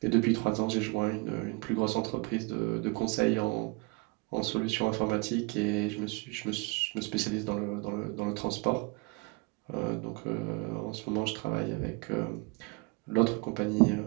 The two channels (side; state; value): left; quieter; 27.9 dB